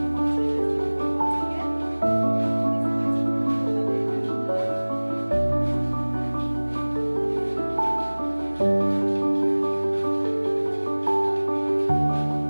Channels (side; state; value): both; inverted; correlation -1.00